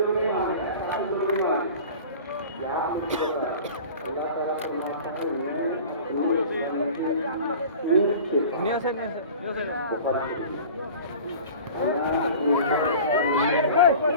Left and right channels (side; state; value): both; inverted; correlation -0.40